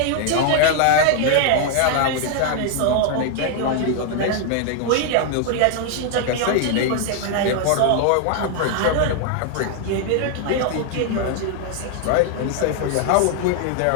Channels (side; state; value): both; different; correlation 0.00